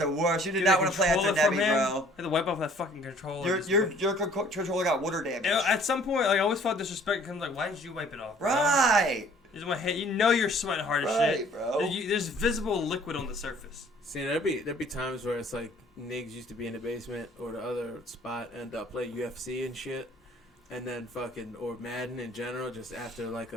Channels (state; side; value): normal; both; correlation 0.55